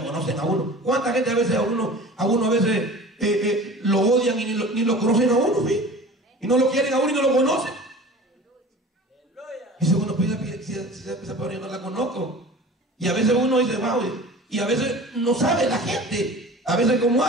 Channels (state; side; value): normal; both; correlation 0.40